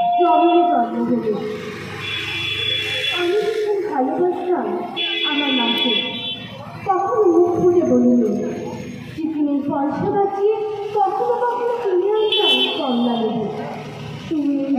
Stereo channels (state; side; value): identical; both; correlation 1.00